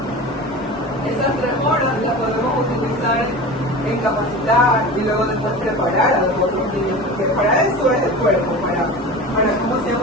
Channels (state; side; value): normal; both; correlation 0.33